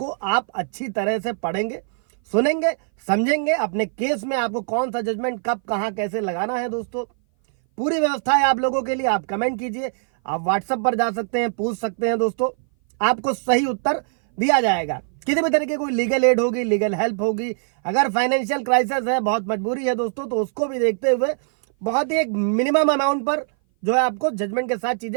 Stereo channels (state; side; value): silent; left; 59 dB below the other